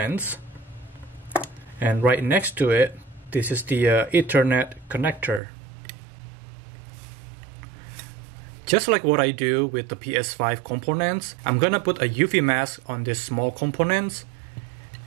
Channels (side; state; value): left; drops out; at 5.4 s